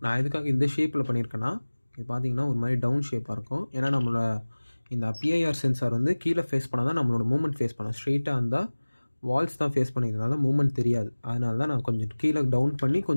நான் எதுக்காக இந்த ஷேப்பில் பண்ணியிருக்கேன்னா, இது பார்த்தீங்கன்னா ஒரு மாதிரி டவுன் ஷேப்பாக இருக்கும். ஏன்னா நம்மளோட இந்த பிஐஆர் சென்சார் வந்து கீழே ஃபேஸ் பண்ணால் தான் நம்மளோட மூவ்மெண்ட் ஃபேஸ் பண்ணோம். ஸ்ட்ரெயிட்டாக இருந்தால் வால்ஸ் தான் ஃபேஸ் பண்ணிக்கிறதுனால மூவ்மெண்ட் தெரியாது. அதனால தான் நான் கொஞ்சம் கீழே டவுன் பண்ணி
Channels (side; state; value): both; inverted; correlation -1.00